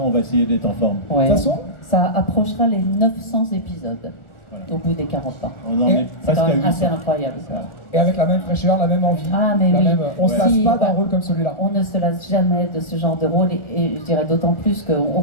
on va essayer d'être en forme. Ouais. De toute façon, ça approchera les 900 épisodes au bout des 40 ans. On en est C'est presque quand à même 800. assez incroyable ça. Voilà. et avec la même fraîcheur, la même envie, Ah mais oui. on se lasse Si, pas d'un rôle comme celui-là. On ne se lasse jamais de ce genre de rôle et je dirais d'autant plus qu'on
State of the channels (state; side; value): late; right; 1.4 ms